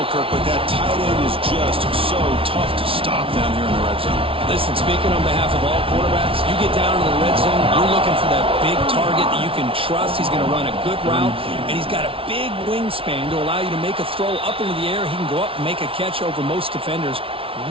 Kirk, but that tight end is just so tough to stop down here in the red zone. Listen, speaking on behalf of all quarterbacks, you get down to the red zone, you're looking for that big target that you can trust. He's going to run a good route, and he's got a big wingspan to allow you to make a throw up into the air. He can go up and make a catch over most defenders.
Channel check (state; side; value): late; left; 0.26 ms